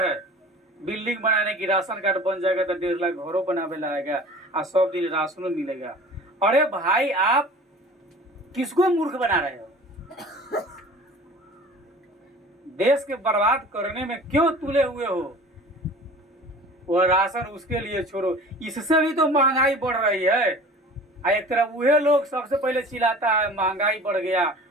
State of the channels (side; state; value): both; normal; correlation 0.43